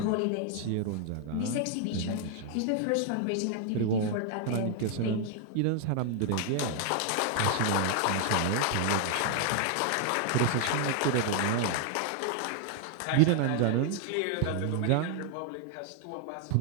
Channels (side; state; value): both; different; correlation 0.00